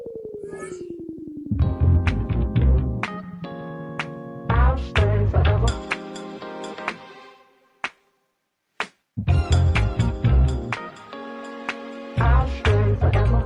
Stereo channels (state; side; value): identical; both; correlation 1.00